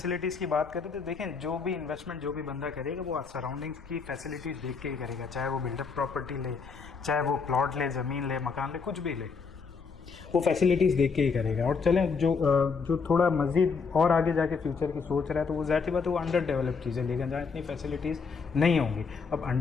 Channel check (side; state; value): right; quieter; 5.2 dB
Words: की बात करें तो देखें, जो भी इन्वेस्टमेंट जो भी बंदा करेगा वो सराउंडिंग्स की फैसिलिटीज़ देख के ही करेगा, चाहे वो बिल्डअप प्रॉपर्टी ले, चाहे वो प्लॉट ले, ज़मीन ले, मकान ले, कुछ भी ले, वो फैसिलिटीज़ देख के ही करेगा। और चलें जो थोड़ा मज़ीद और आगे जाके फ्यूचर की सोच रहा है तो वो ज़ाहिर सी बात है वो अंडर डेवलप चीज़ें लेकिन जहाँ इतनी फैसिलिटीज़ नहीं होंगी। अब